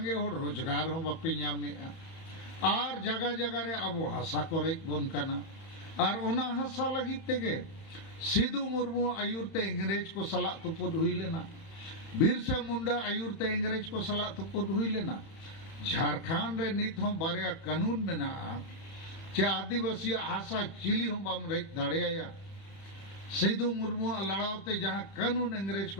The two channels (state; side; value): late; right; 31 ms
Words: होड़ रोजगार हो बापे ᱧᱟᱢᱮᱟ और जगह जगह रे आबो हासा करे बन कना और ओना हासा लगित तेगे सिद्धू मुर्मू आयुरते इंग्रेज को सला तुपुद हुई लेना बिरसा मुंडा आयुरते इंग्रेज को सला तुपुद हुई लेना झारखंड रे नित हो बारिया कानून मेना चे आदिवासी हासा चिली हो बाम रे दाड़िया सिद्धू मुर्मू लड़ावते जहां कानून इंग्रेज